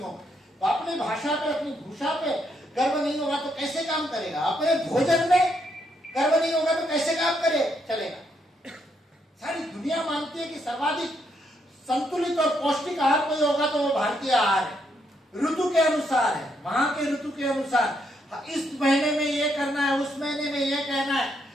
तो अपनी भाषा पे, अपनी भूषा पे गर्व नहीं होगा तो कैसे काम करेगा। अपने भोजन में गर्व नहीं होगा तो कैसे काम चलेगा। सारी दुनिया मानती है कि सर्वाधिक संतुलित और पौष्टिक आहार कोई होगा तो वो भारतीय आहार है, ऋतु के अनुसार है, वहां के ऋतु के अनुसार। इस महीने में ये करना है, उस महीने में ये कहना है।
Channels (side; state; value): both; normal; correlation 0.76